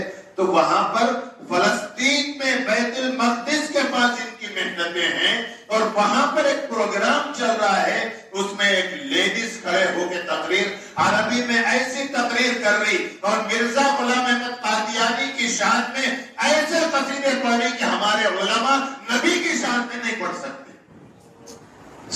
تو وہاں پر فلسطین میں بیت المقدس کے پاس ان کی محنتیں ہیں، اور وہاں پر ایک پروگرام چل رہا ہے، اس میں ایک لیڈیز کھڑے ہو کے تقریر عربی میں ایسی تقریر کر رہی، اور مرزا غلام احمد قادیانی کی شان میں ایسے قصیدے پڑھ رہی کہ ہمارے علماء نبی کی شان میں نہیں پڑھ سکتے۔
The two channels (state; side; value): identical; both; correlation 1.00